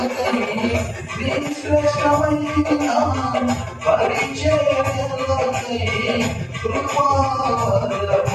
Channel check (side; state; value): both; identical; correlation 1.00